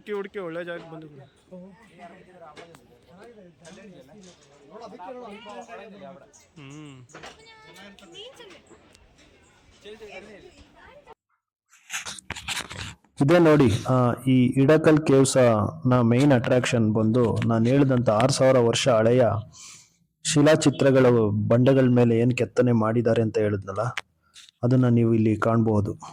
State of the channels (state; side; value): identical; both; correlation 1.00